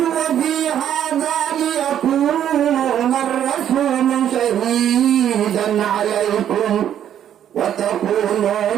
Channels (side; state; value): left; quieter; 10.2 dB